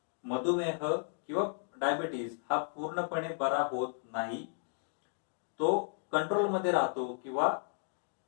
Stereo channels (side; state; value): right; silent; digital silence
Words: मधुमेह किंवा डायबिटीस हा पूर्णपणे बरा होत नाही, तो कंट्रोलमध्ये राहतो किंवा